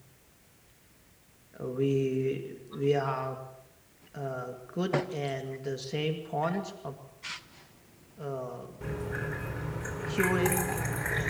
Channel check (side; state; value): both; identical; correlation 1.00